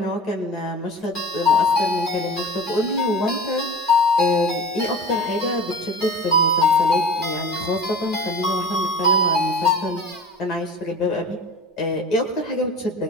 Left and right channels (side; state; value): both; normal; correlation 0.36